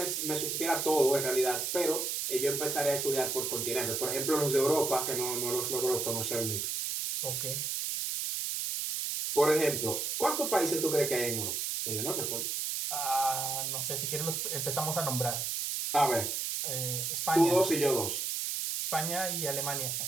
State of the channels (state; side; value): noise; right; hiss, 1 dB below the sound